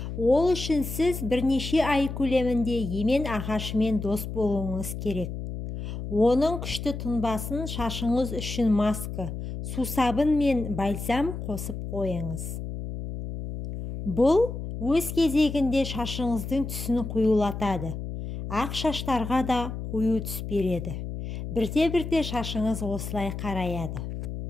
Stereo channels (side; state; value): left; noise; hum, 6 dB below the sound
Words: Ол үшін сіз бірнеше ай көлемінде емен ағашымен дос болуыңыз керек. Оның күшті тұнбасын шашыңыз үшін маска, сусабын мен бальзам қосып қойыңыз. Бұл өз кезегінде шашыңыздың түсін қоюлатады. Ақ шаштарға да қою түс береді. Бірте-бірте шашыңыз осылай қараяды.